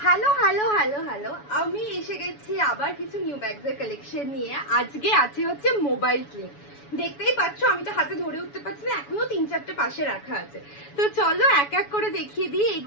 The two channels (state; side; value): late; right; 7.1 ms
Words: Hello hello hello hello আমি এসে গেছি আবার কিছু নিউ ব্যাগসের কালেকশন নিয়ে। আজকে আছে হচ্ছে মোবাইল স্লিং। দেখতেই পাচ্ছ আমি তো হাতে ধরে উঠতে পারছি না, এখনো 3-4টে পাশে রাখা আছে। তো চলো এক এক করে দেখিয়ে দিই